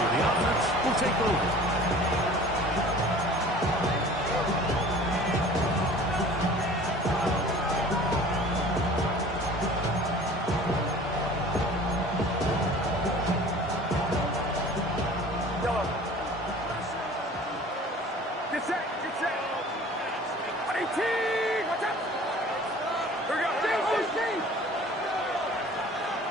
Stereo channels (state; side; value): normal; both; correlation 0.46